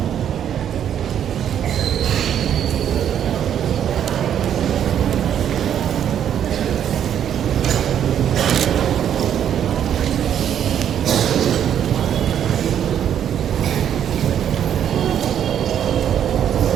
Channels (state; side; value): quieter; left; 9.5 dB